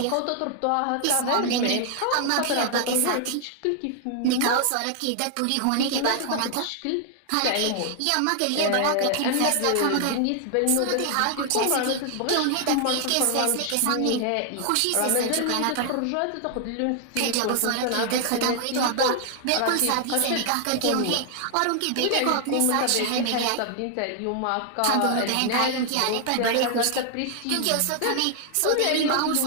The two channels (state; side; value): different; both; correlation 0.00